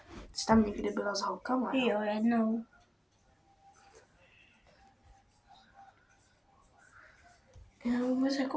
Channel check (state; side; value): identical; both; correlation 1.00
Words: Jsi tam někdy byla s holkama? Jo, jednou. Já vůbec